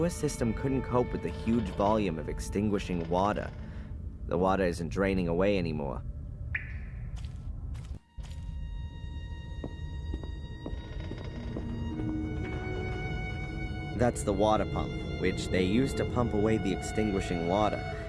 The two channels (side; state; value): both; identical; correlation 1.00